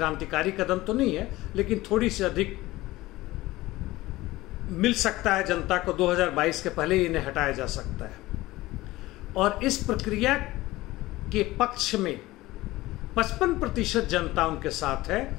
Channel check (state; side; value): quieter; right; 18.2 dB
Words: कदम तो नहीं है, लेकिन थोड़ी सी अधिक मिल सकता है जनता को। 2022 के पहले ही इन्हें हटाया जा सकता है। और इस प्रक्रिया के पक्ष में 55% जनता उनके साथ है